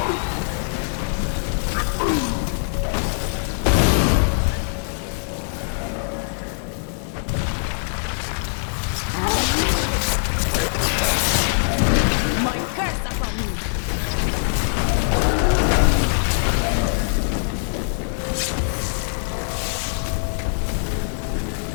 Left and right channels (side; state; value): right; silent; digital silence